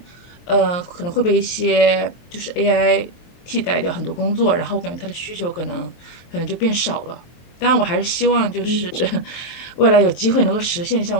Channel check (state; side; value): late; right; 23 ms